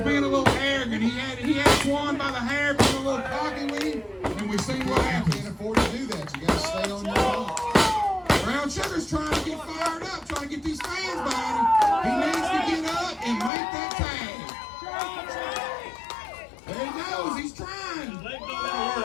a little arrogant. He had Swan by the hair, being a little cocky with him, and we've seen what You can't happens. afford to do that. You got to stay on your feet. Brown Sugar's trying to get fired up, trying to get these fans behind him. He needs to get up and make that tag. There he goes. He's trying. His leg don't want to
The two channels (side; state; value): right; drops out; at 13.5 s